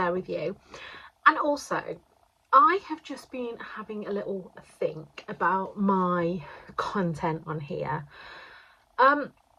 with you. And also, I have just been having a little think about my content on here. And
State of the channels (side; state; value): both; identical; correlation 1.00